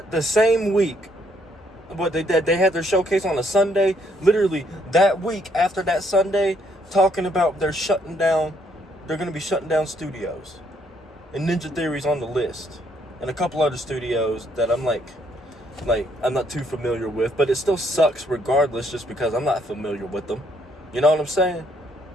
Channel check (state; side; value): normal; both; correlation 0.70